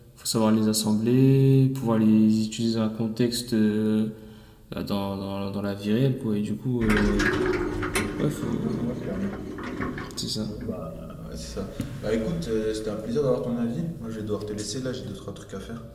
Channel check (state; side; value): identical; both; correlation 1.00